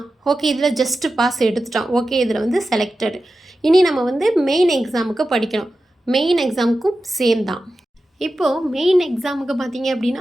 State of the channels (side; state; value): both; normal; correlation 0.92